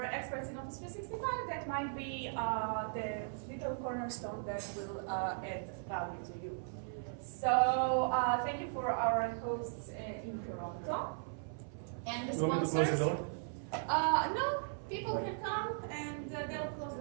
experts in Office 365, that might be the little cornerstone that will add value to you. So thank you for our hosts in Toronto. And the sponsors. No, people can come and they'll close the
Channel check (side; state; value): left; silent; 53 dB below the other